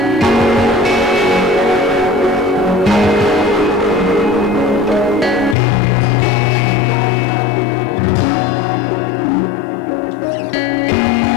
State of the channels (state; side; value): drops out; right; at 5.6 s